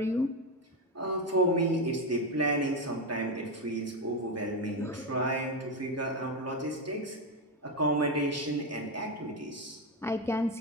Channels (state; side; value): normal; both; correlation 0.11